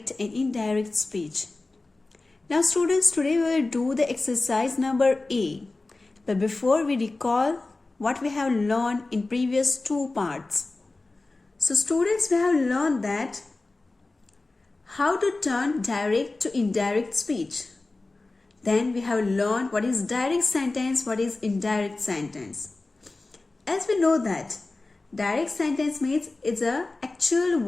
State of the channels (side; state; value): right; quieter; 3.3 dB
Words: and indirect speech. Now students, today we will do the exercise number A. But before we recall what we have learned in previous two parts. So students, we have learned that how to turn direct to indirect speech. Then we have learned what is direct sentence, what is indirect sentence. As we know that direct sentence means it's the actual